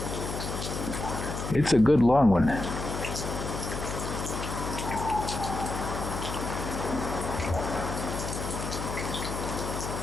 It's a good long one.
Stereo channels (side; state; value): left; noise; hum, 5 dB below the sound